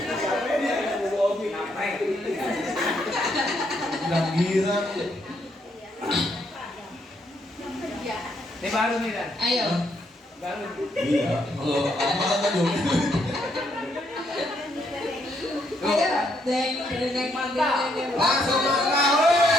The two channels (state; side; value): normal; both; correlation 0.74